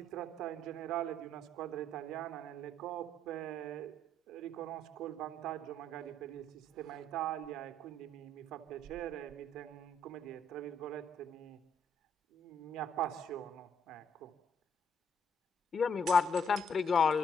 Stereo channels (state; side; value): normal; both; correlation 0.70